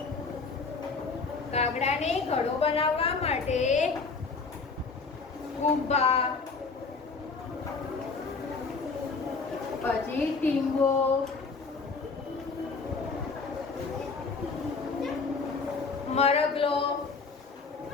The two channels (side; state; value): right; quieter; 4.5 dB